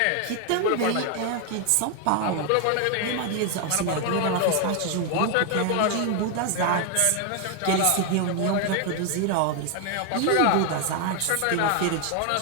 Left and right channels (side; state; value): both; different; correlation 0.01